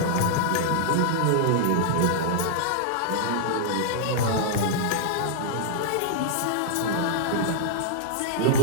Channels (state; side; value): different; both; correlation -0.01